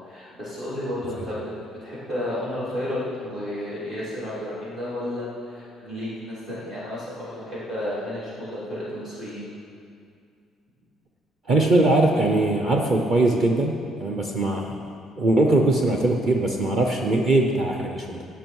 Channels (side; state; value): both; normal; correlation 0.70